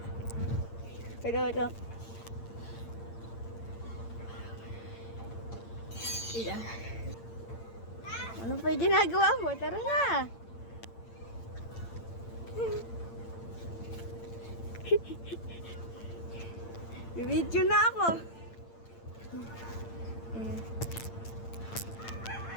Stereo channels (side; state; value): right; late; 8.8 ms